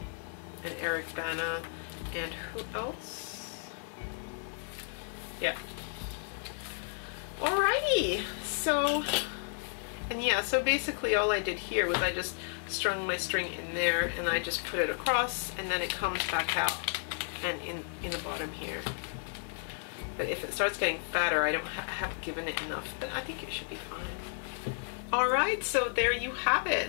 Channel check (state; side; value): silent; right; 56 dB below the other